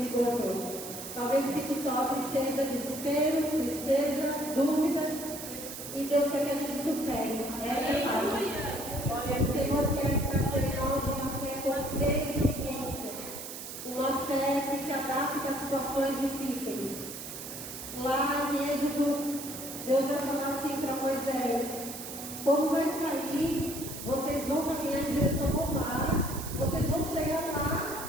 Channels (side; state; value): right; noise; hiss, 9 dB below the sound